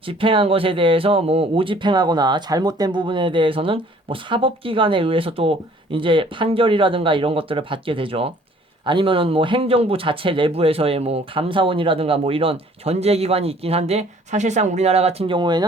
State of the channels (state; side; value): normal; both; correlation 0.56